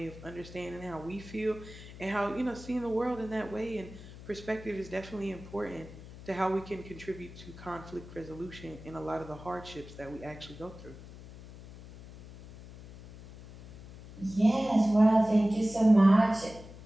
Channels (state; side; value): noise; left; hum, 16 dB below the sound